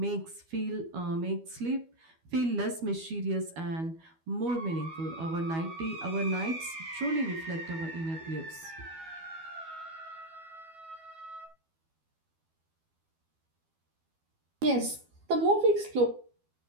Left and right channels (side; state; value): left; late; 12 ms